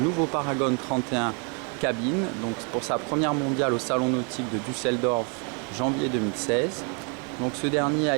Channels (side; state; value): left; quieter; 36.2 dB